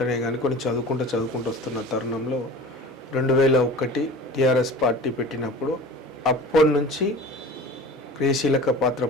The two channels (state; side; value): normal; both; correlation 0.38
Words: కానీ కొన్ని చదువుకుంటూ వస్తున్న తరుణంలో 2001 టీఆర్ఎస్ పార్టీ పెట్టినప్పుడు అప్పటి నుంచి క్రియాశీలక పాత్ర